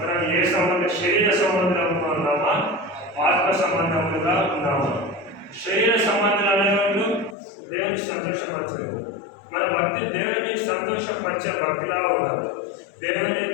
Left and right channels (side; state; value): right; drops out; at 7.4 s